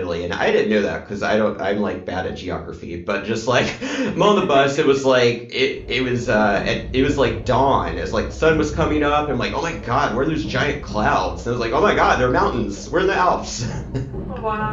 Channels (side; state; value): both; identical; correlation 1.00